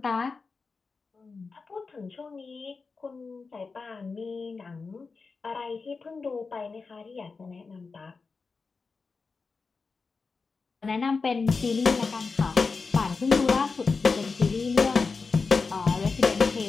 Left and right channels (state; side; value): quieter; right; 4.5 dB